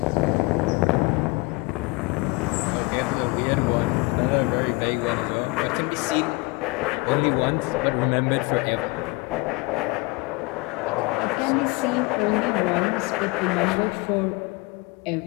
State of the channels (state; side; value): quieter; right; 25.4 dB